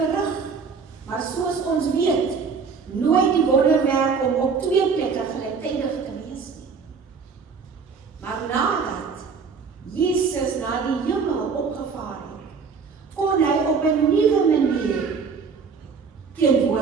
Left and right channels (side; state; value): left; quieter; 5.4 dB